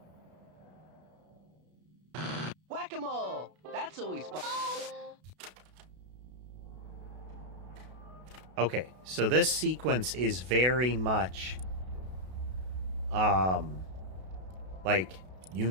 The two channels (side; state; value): left; late; 32 ms